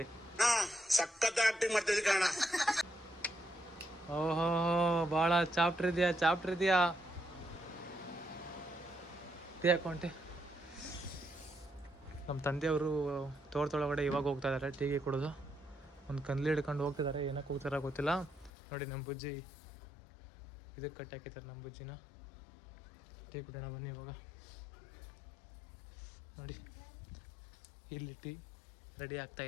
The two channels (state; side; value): drops out; right; at 18.5 s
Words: ಓಹೋ ಭಾಳ ಚಾಪ್ಟರ್ ಇದೆಯಾ ಟೀ ಹಾಕೊಂಡೆ. ನಮ್ಮ ತಂದೆಯವರು ತೋಟದೊಳಗಡೆ ಇವಾಗ ಹೋಗ್ತಾ ಇದ್ದಾರೆ ಟೀಗೆ ಕುಡಿದು. ಒಂದು ಕನ್ಲಿ ಹಿಡ್ಕೊಂಡು ಹೋಗ್ತಿದ್ದಾರೆ, ಏನಕ್ಕೆ ಹೋಗ್ತಾರ ಗೊತ್ತಿಲ್ಲ. ನೋಡಿ ನಮ್ಮ ಬುಜ್ಜಿ ಇದಕ್ಕೆ ಕಟ್ಟಿ ಹಾಕಿದ್ದಾರೆ. ನಮ್ಮ ಬುಜ್ಜಿನ ಟೀ ಕುಡಿಯೋಣ ಬನ್ನಿ ಇವಾಗ. ನೋಡಿ ಇಲ್ಲಿ ಟೀ ರೆಡಿ